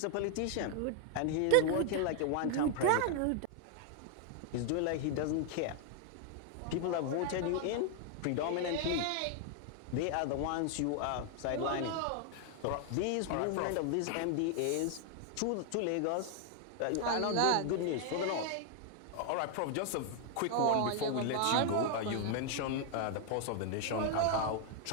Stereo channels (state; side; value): different; both; correlation 0.00